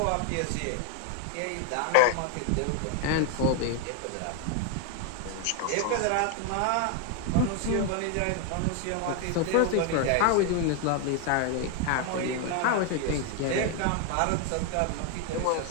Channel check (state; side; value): different; both; correlation 0.00